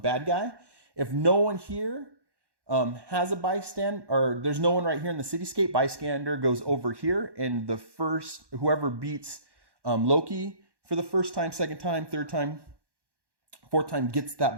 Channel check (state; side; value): late; left; 1.1 ms